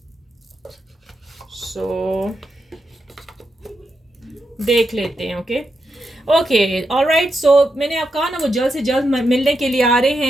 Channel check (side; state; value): both; normal; correlation 0.85